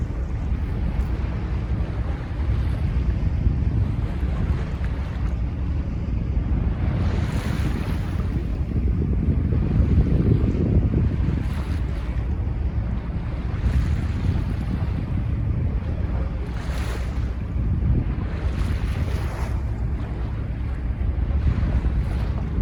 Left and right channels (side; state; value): both; identical; correlation 1.00